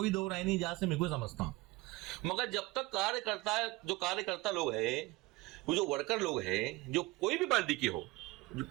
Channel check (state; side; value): quieter; left; 20.7 dB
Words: दो राय नहीं, जहां से मैं को समझता हूँ। मगर जब तक कार्यकर्ता लोग हैं, वो जो वर्कर लोग हैं, जो कोई भी पार्टी के हो, जो